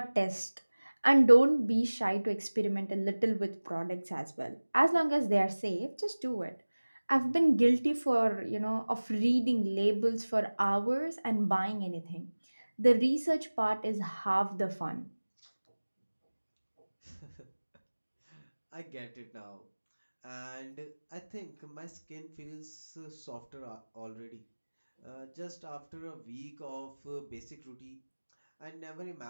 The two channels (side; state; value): both; inverted; correlation -1.00